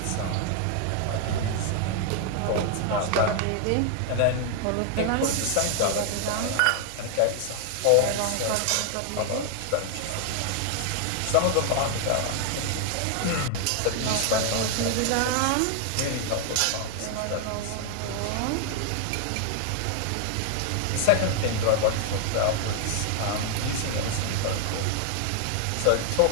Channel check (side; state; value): both; different; correlation 0.00